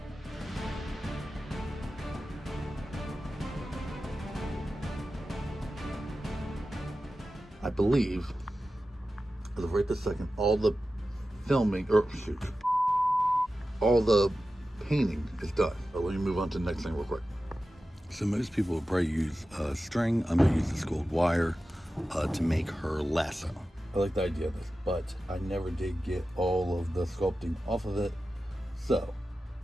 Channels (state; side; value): normal; both; correlation 0.93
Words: I believe, as of right this second, all the filming, or shoot, all the painting is done. But let me move on to the next thing real quick. So most people would probably use string. I'm gonna use this gold wire to make her lasso. I like the idea of this, but I never did get all of the sculpting off of it. So